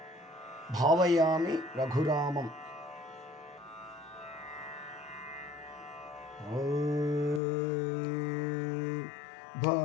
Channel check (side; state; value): right; drops out; at 7.4 s